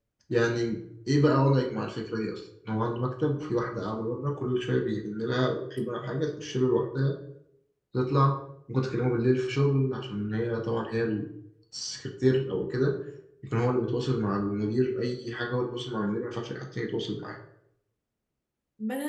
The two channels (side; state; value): both; identical; correlation 1.00